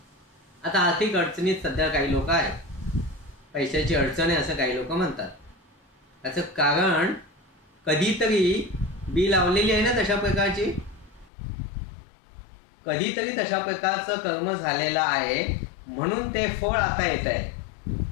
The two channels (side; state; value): right; drops out; at 11.3 s